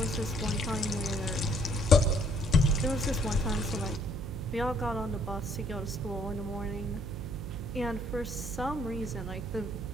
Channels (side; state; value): right; noise; hum, 7 dB below the sound